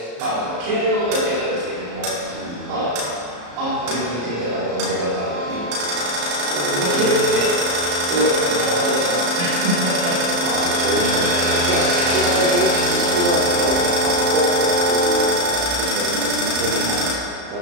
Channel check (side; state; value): left; late; 34 ms